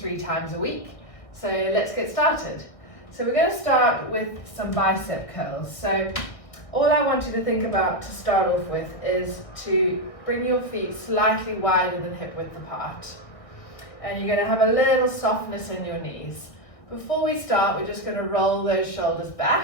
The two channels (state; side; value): late; right; 1.6 ms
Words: times a week. So let's get started. So we're going to start with some bicep curls. So all I want you to think about to start off with is to bring your feet slightly wider than hip width apart. And you're going to have a little softness in your knees. Before we start, we're just going to roll those shoulders